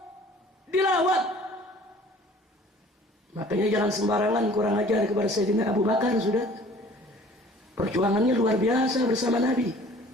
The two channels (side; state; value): both; normal; correlation 0.50